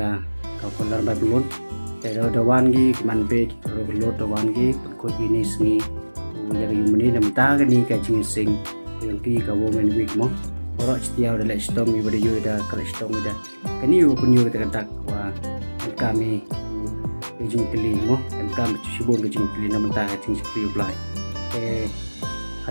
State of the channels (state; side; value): inverted; both; correlation -1.00